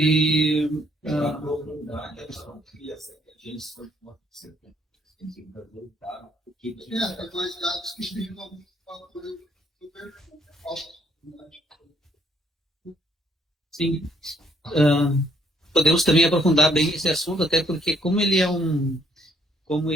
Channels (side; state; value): both; normal; correlation 0.68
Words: mais dados que explicam alguns fatores super Sim. Podemos também aprofundar bem esse assunto, até porque como ele é um